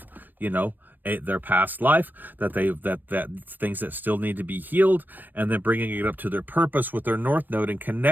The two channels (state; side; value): late; left; 0.090 ms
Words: their past life, that things that still need to be healed, and then bringing it up to their purpose with their North Node and